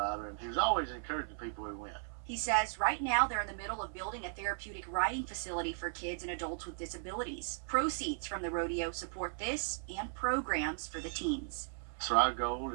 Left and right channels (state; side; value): silent; left; 53 dB below the other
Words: and he was always encouraging people who went. He says right now they're in the middle of building a therapeutic riding facility for kids and adults with disabilities. Proceeds from the rodeo support this and programs for the teens. So our goal